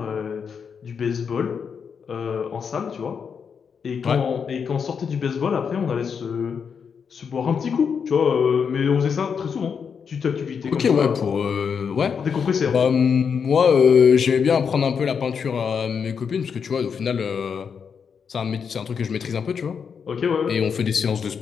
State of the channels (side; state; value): right; quieter; 6.5 dB